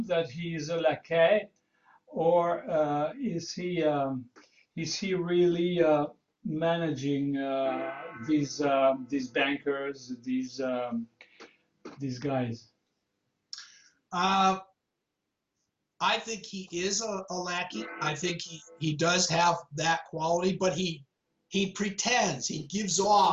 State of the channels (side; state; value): both; identical; correlation 1.00